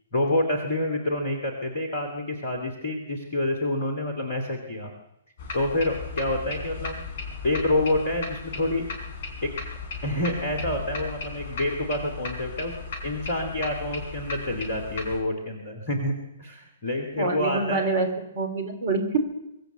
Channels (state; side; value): inverted; both; correlation -0.54